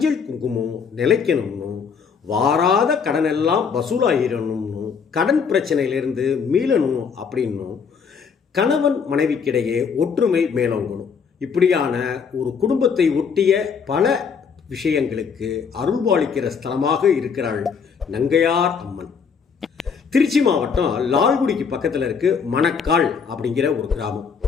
குங்குமம் நிலைக்கணும்னு, வாராத கடனெல்லாம் வசூலாகிடணும்னு, கடன் பிரச்சனையிலிருந்து மீளணும் அப்படின்னும், கணவன் மனைவிக்கிடையே ஒற்றுமை மேலோங்கணும், இப்படியான ஒரு குடும்பத்தை ஒட்டிய பல விஷயங்களுக்கு அருள்பாலிக்கிற ஸ்தலமாக இருக்கிறாள் நங்கையார் அம்மன். திருச்சி மாவட்டம் லால்குடிக்கு பக்கத்தில் இருக்கு மணக்கால் அப்படிங்கிற ஒரு கிராமம்.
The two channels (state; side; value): quieter; right; 6.2 dB